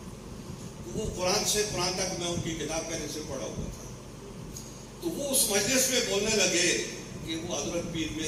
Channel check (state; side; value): identical; both; correlation 1.00